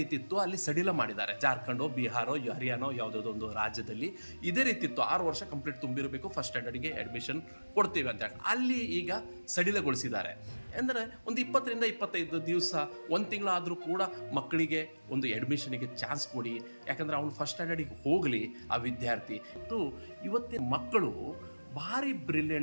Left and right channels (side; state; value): both; inverted; correlation -1.00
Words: ಇತ್ತು. ಅಲ್ಲಿ ಸಡಿಲ ಮಾಡಿದ್ದಾರೆ. ಜಾರ್ಖಂಡೋ, ಬಿಹಾರೋ, ಹರಿಯಾಣೋ ಯಾವುದಾದ್ರು ಒಂದು ರಾಜ್ಯದಲ್ಲಿ ಇದೇ ರೀತಿ ಇತ್ತು. 6 ವರ್ಷ ಕಂಪ್ಲೀಟ್ ತುಂಬಿರಬೇಕು, ಫಸ್ಟ್ ಸ್ಟ್ಯಾಂಡರ್ಡ್ಗೆ ಅಡ್ಮಿಷನ್ ಕೊಡ್ತೀವಿ ಅಂತ ಹೇಳಿ ಅಲ್ಲಿ ಈಗ ಸಡಿಲಗೊಳಿಸಿದ್ದಾರೆ. ಅಂದರೆ ಒಂದು 20 ರಿಂದ 25 ದಿವಸ, 1 ತಿಂಗಳಾದರೂ ಕೂಡ ಮಕ್ಕಳಿಗೆ ಒಂದು ಅಡ್ಮಿಷನ್ಗೆ ಚಾನ್ಸ್ ಕೊಡಿ. ಯಾಕಂದರೆ ಅವನು ಫಸ್ಟ್ ಸ್ಟ್ಯಾಂಡರ್ಡಿಗೆ ಹೋಗಲಿ ಆ ವಿದ್ಯಾರ್ಥಿ. ಇವತ್ತಿನ ಮಕ್ಕಳು ಭಾರಿ